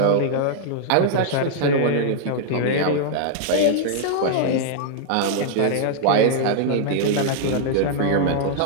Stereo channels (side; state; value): both; different; correlation -0.01